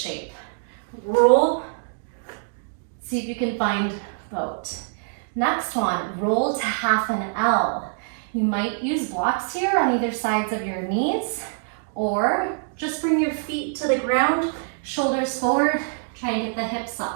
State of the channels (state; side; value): silent; left; 62 dB below the other